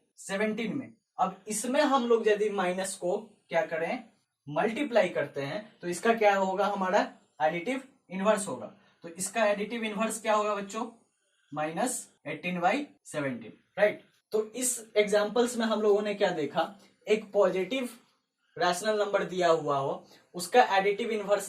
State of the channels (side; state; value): both; identical; correlation 1.00